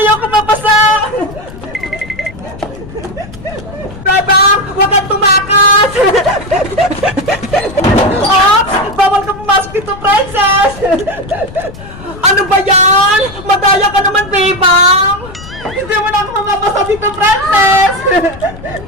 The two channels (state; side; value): noise; left; rumble, 16 dB below the sound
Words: mabasa! Bebang! Huwag kang tumakas! Ops! Bawal ka pumasok dito, Princess! Ano ba yan? Madaya ka naman, Bebang! Hindi mo na ako mamabasa dito, Princess!